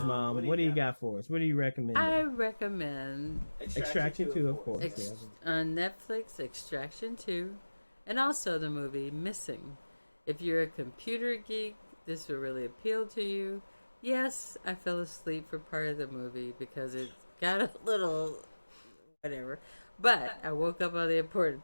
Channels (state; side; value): inverted; both; correlation -1.00